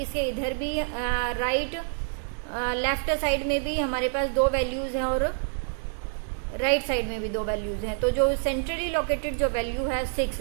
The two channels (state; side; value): silent; left; digital silence